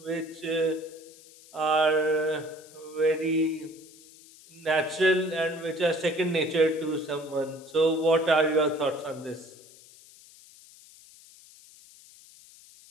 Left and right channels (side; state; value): left; noise; hiss, 23 dB below the sound